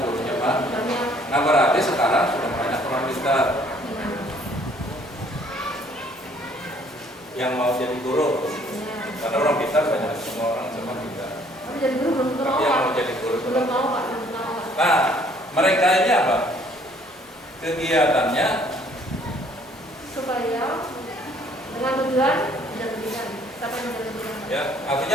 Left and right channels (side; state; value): both; normal; correlation 0.60